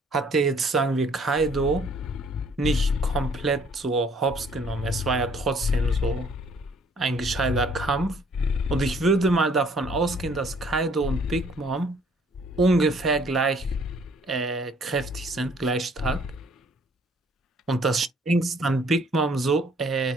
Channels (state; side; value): normal; both; correlation 0.60